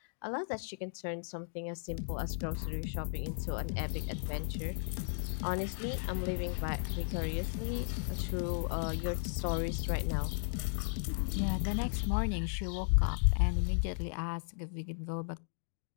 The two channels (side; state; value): right; silent; digital silence